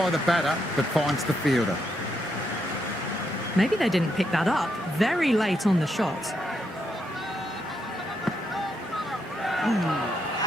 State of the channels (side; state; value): both; normal; correlation 0.79